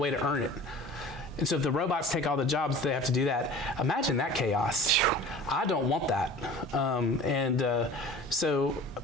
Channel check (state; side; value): normal; both; correlation 0.41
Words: to earn it. And so if the robots take all the jobs, they have to do that. Imagine that chaos. I don't want that. So